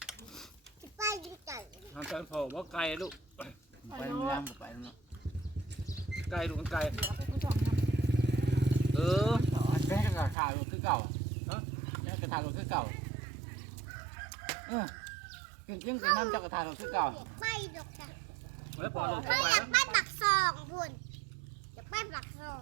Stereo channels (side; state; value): left; drops out; at 10.4 s